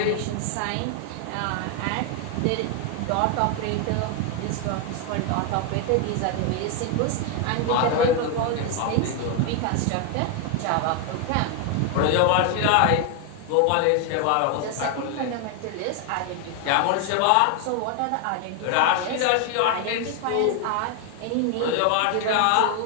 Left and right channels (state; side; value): different; both; correlation 0.01